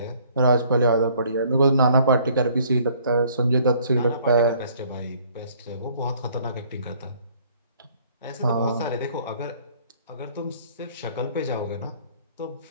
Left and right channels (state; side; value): inverted; both; correlation -0.59